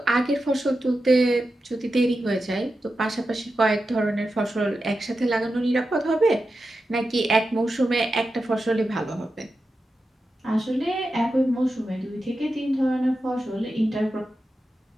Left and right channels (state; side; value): normal; both; correlation 0.90